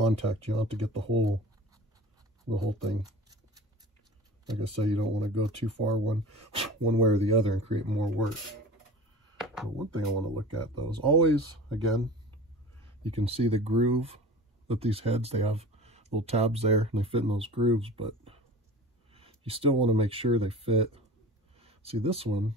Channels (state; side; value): normal; both; correlation 0.38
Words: You don't have to get the whole thing. Like I say, you don't want to go too far one way or the other and create more work. But one thing I want to look at though is always, again, you can see the groove that these heads, they have little tabs there and they fit in those grooves, but you still want to make sure they fit. See this one,